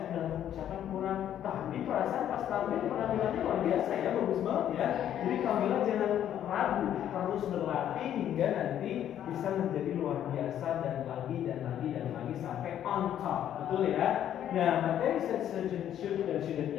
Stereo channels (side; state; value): right; quieter; 10.6 dB